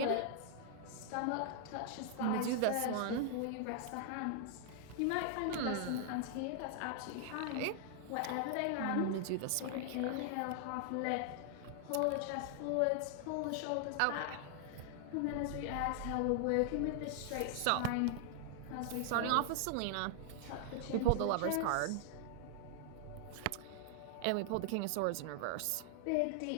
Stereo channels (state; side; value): different; both; correlation 0.00